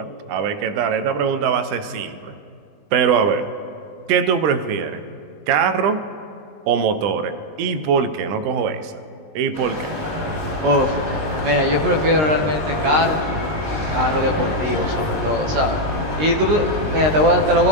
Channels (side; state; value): left; late; 19 ms